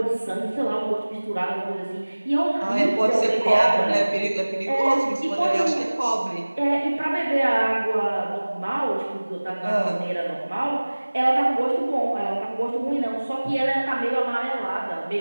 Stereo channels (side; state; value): both; inverted; correlation -1.00